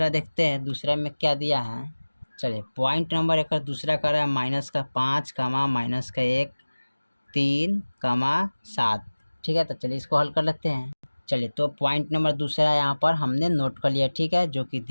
देखते हैं। दूसरा में क्या दिया है, चलिए पॉइंट नंबर एक दूसरा कर रहा है -5, -1, 3, 7। ठीक है, तो चलिए इसको हल कर लेते हैं। चलिए, तो पॉइंट नंबर दूसरा यहाँ पर हमने नोट कर लिया। ठीक है, जो कि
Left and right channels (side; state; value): both; inverted; correlation -1.00